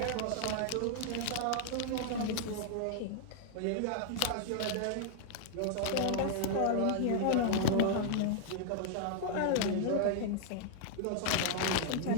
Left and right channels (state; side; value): different; both; correlation 0.00